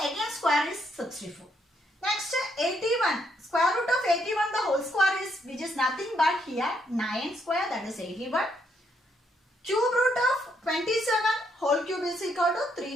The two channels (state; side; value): normal; both; correlation 0.74